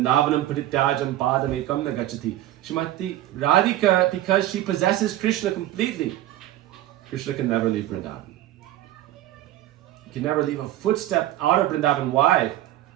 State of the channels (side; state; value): left; quieter; 14.1 dB